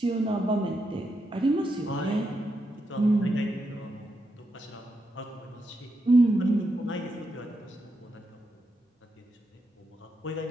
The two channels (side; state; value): both; normal; correlation 0.84